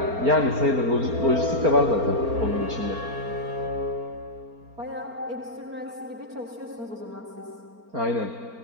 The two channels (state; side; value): late; left; 4.4 ms